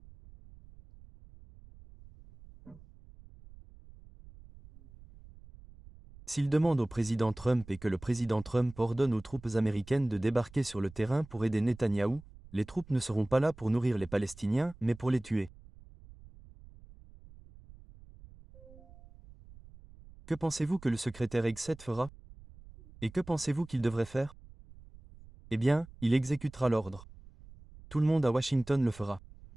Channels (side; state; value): right; noise; rumble, 21 dB below the sound